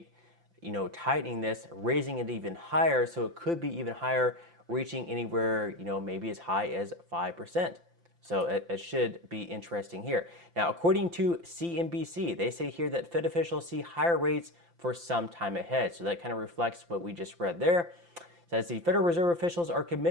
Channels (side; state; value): left; late; 5.8 ms